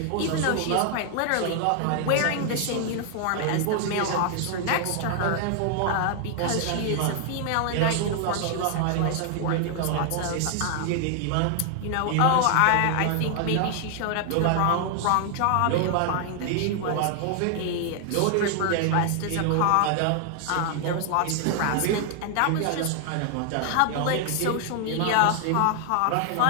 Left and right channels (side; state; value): both; different; correlation 0.00